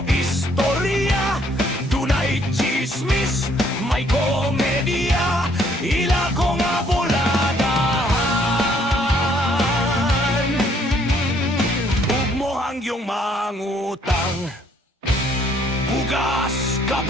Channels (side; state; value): both; normal; correlation 0.65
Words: istorya, dunay chismis, may komedya, ila ko nga buladahan. Ug mo hangyong mangutang, bugas,